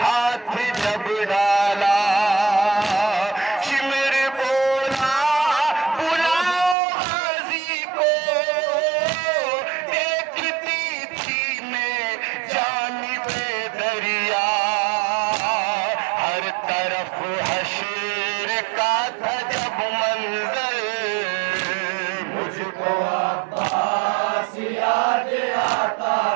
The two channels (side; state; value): left; drops out; at 6.8 s